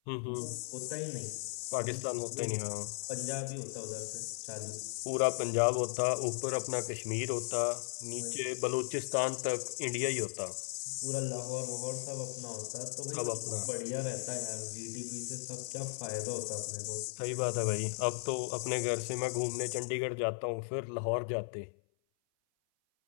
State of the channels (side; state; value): right; silent; 54 dB below the other